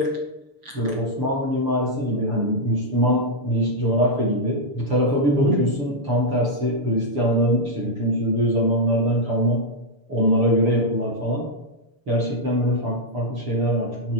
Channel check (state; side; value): late; left; 6.9 ms